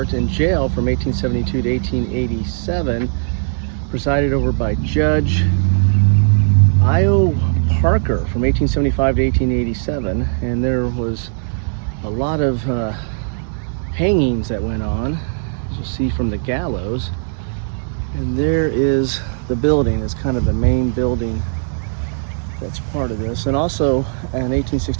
and jail from 1872 to 1887, presided over by Judge I.O. Parker from 1875 to 1887, and there was a lot of hangings that went on, as you'll see from the gallows. And there is the building. It's kind of the main building that's part of this. And also in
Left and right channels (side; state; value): left; silent; 62 dB below the other